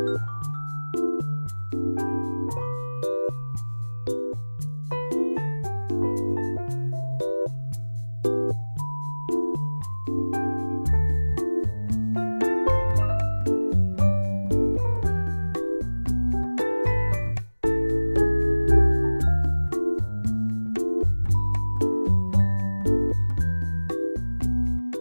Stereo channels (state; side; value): inverted; both; correlation -1.00